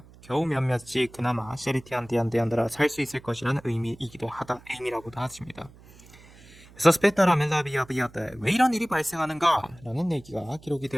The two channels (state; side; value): noise; right; hum, 23 dB below the sound